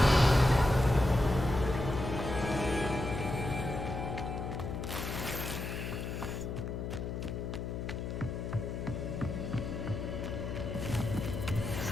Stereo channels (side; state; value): left; noise; hum, 4 dB below the sound